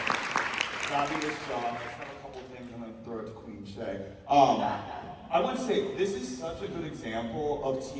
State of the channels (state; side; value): identical; both; correlation 1.00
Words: fabulous job. I just have a couple of things I'm going to throw it to Queen Shay. I want to say, this is such a good example of